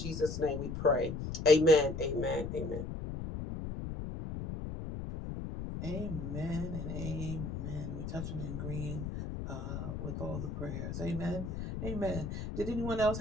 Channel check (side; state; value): left; noise; rumble, 5 dB below the sound